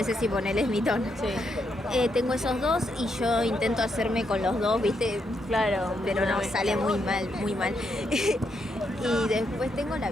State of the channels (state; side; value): normal; both; correlation 0.79